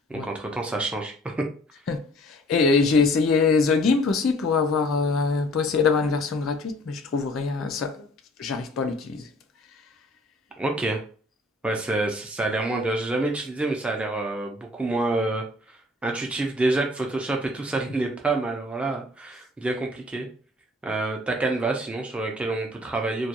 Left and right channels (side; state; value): both; normal; correlation 0.54